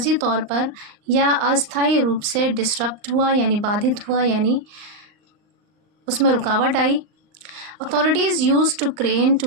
तौर पर या अस्थायी रूप से डिस्टर्ब हुआ यानी बाधित हुआ, यानी उसमें रुकावट आई। Authorities use to crane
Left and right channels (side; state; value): left; late; 39 ms